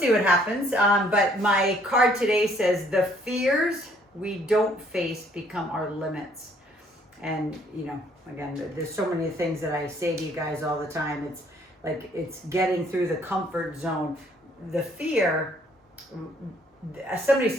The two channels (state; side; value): normal; both; correlation 0.63